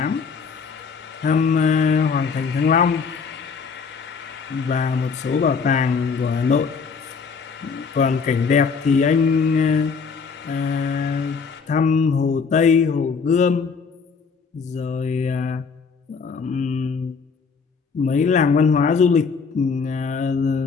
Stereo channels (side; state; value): right; quieter; 5.4 dB